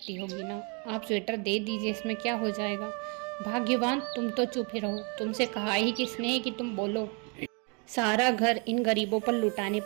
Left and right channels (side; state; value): left; quieter; 34.3 dB